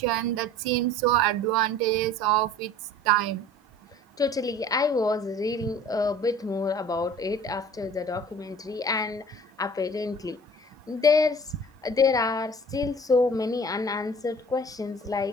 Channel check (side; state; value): both; normal; correlation 0.46